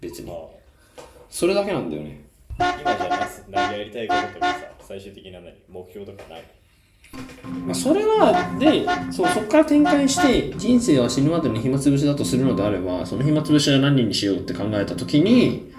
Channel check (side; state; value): both; identical; correlation 1.00